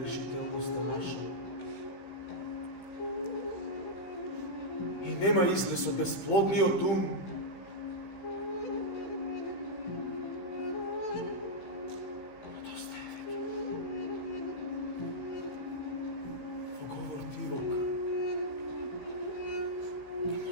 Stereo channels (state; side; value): late; right; 15 ms